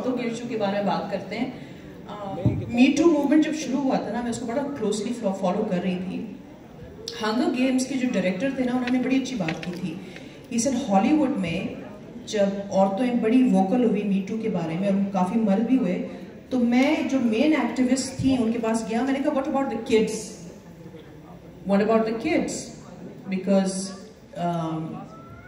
کے ایشو کے بارے میں بات کرتے ہیں. می ٹو موومنٹ جب شروع ہوا تھا نا, میں اس کو بڑا کلوزلی فالو کر رہی تھی. ہنگر گیمس کے جو ڈائریکٹر تھے نا, انہوں نے بڑی اچھی بات کی تھی. ہی سیڈ ہالی ووڈ میں جب عورتیں بڑی ووکل ہوئی می ٹو کے بارے میں, اور کافی مرد بھی ہوئے, تو میں جو مین ایکٹیوسٹ تھیں ان کے پاس گیا. میں نے کہا what about the kids, what about the kids, because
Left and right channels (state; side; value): identical; both; correlation 1.00